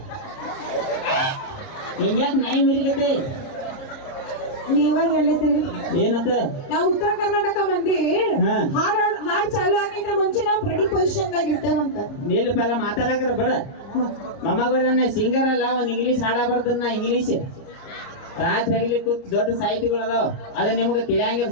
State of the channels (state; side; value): late; right; 30 ms